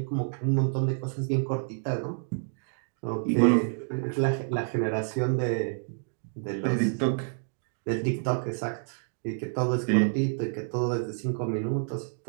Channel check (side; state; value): left; silent; digital silence